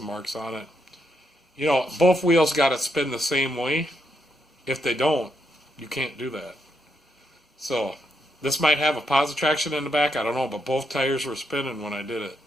marks on it. You know, both wheels got to spin the same way. If they don't, you can't do that. So, this might have a positive traction in the back. I don't know, but both tires were spinning when I did it.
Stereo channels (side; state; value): both; normal; correlation 0.79